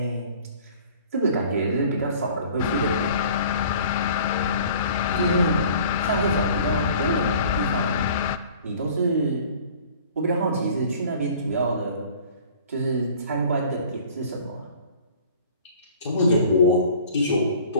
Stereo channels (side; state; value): both; inverted; correlation -0.48